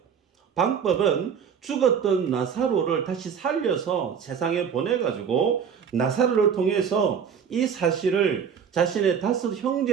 방법은 죽었던 나사로를 다시 살려서 세상에 보내가지고 나사로를 통해서 이 사실을 자신의 5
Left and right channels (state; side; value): quieter; left; 7.2 dB